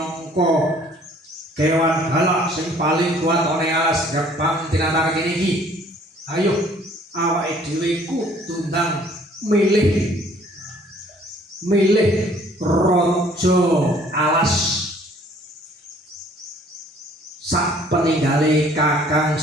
kewan galak sing paling kuat ana alas gerbang tinatar kene iki. Ayo, awake dhewe kudu ndang milih raja alas sak peninggale Kakang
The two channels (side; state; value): both; normal; correlation 0.57